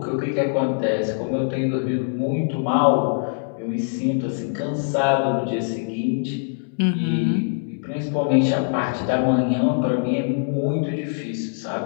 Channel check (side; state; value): right; silent; digital silence